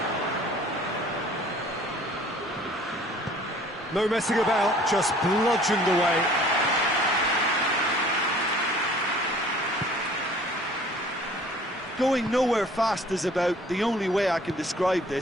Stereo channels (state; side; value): normal; both; correlation 0.52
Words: No messing about, just bludgeoned away. Going nowhere fast is about the only way I can describe